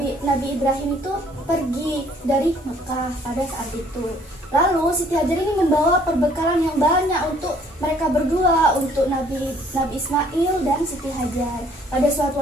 Ibrahim itu pergi dari Mekah pada saat itu. Lalu Siti Hajar ini membawa perbekalan yang banyak untuk mereka berdua, untuk Nabi Ismail dan Siti Hajar. Pada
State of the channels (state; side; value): normal; both; correlation 0.60